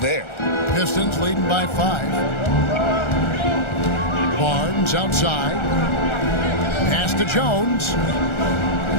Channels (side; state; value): right; late; 1.4 ms